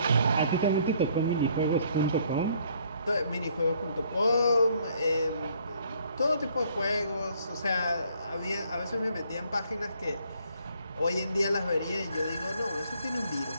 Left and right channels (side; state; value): both; inverted; correlation -0.64